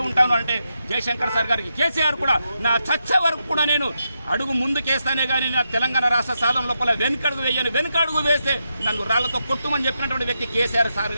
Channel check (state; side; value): inverted; both; correlation -0.84